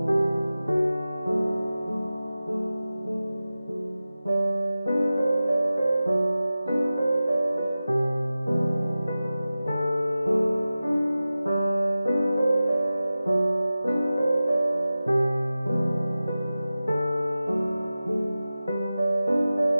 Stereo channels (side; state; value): both; inverted; correlation -0.95